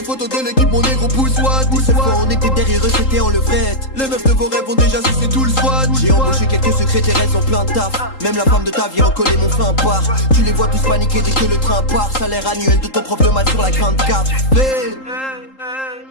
photos de l'équipe, mon négro pousse what. Des seules fois on était derrière eux, c'était en levrette. Les meufs de vos rêves ont déjà sucé tout le SWAT. J'ai embauché quelques secrétaires, elles ont plein de taf. Même la femme de ta vie recollait mon fin part. Tu les vois tous paniquer dès que le train part. Salaire annuel de ton prof de maths sur la grande carte. Mais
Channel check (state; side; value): late; right; 3.8 ms